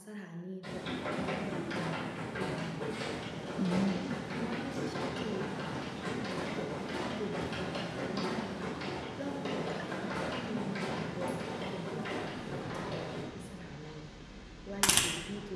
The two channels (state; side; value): identical; both; correlation 1.00